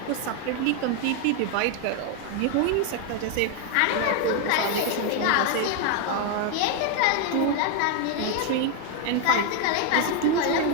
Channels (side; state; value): both; different; correlation 0.01